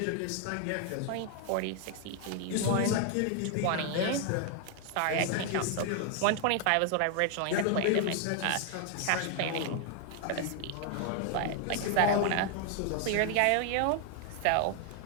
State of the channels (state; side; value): different; both; correlation 0.00